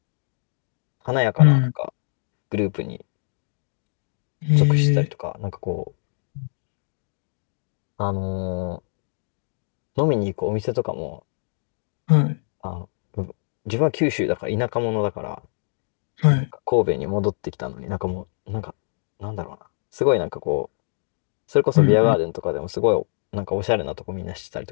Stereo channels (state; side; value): silent; right; digital silence